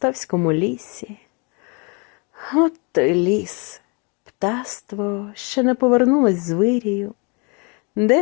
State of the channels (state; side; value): quieter; right; 32.3 dB